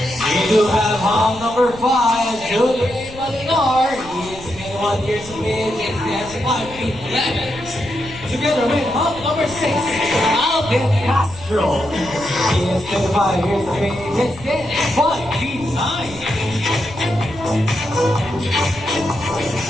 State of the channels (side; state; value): left; noise; rumble, 17 dB below the sound